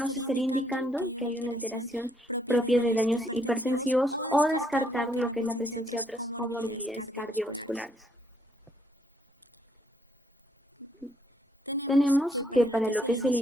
estaría indicando que hay una alteración propia de daños hipertensivos o descartar lo que es la presencia de otras comorbilidades cardiovasculares. Tenemos que para lo que es el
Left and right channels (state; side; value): normal; both; correlation 0.71